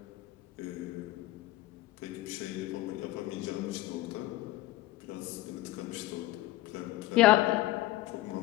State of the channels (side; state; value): right; quieter; 17.1 dB